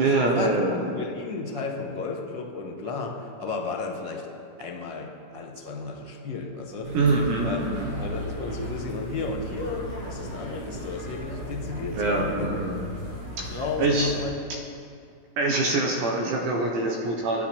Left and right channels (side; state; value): left; late; 17 ms